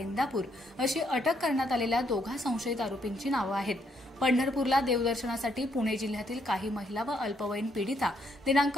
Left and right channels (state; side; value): normal; both; correlation 0.73